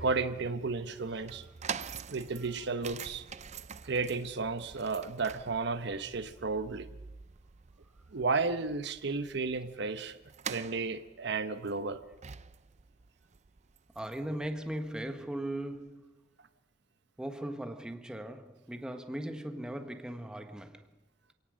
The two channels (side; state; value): left; quieter; 3.4 dB